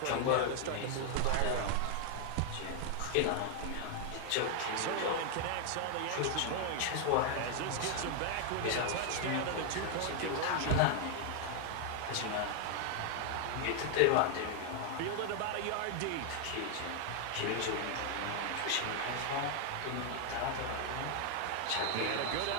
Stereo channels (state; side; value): different; both; correlation 0.00